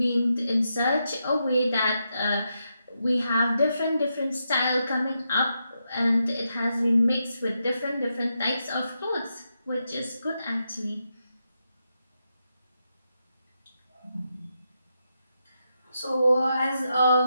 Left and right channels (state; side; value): inverted; both; correlation -0.84